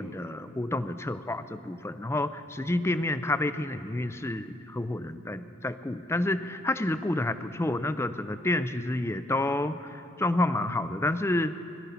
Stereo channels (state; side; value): normal; both; correlation 0.72